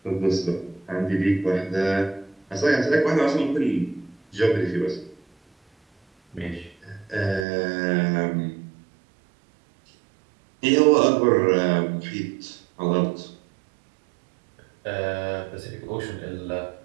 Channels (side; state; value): left; drops out; at 7.5 s